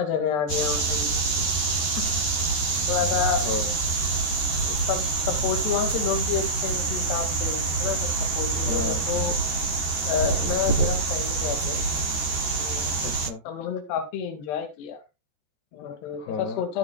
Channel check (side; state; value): right; late; 13 ms